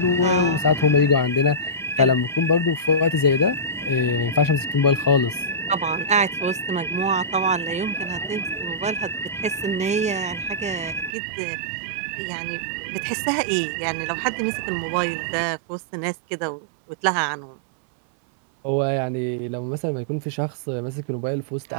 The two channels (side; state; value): left; drops out; at 11.1 s